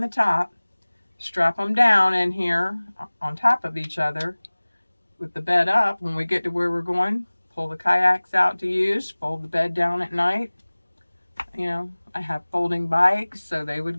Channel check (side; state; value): both; inverted; correlation -1.00